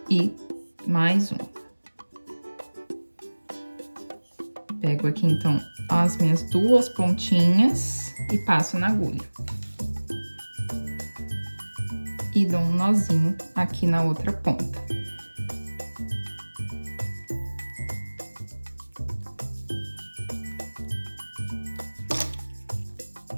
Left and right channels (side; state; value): both; inverted; correlation -1.00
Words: e mais um. Pego aqui, então, as minhas duas pontinhas e passo na agulha. E dou um nozinho aqui na outra ponta.